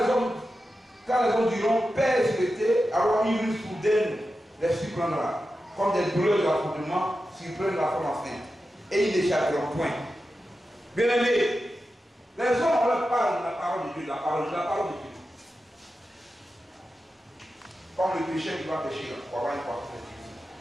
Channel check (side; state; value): both; normal; correlation 0.91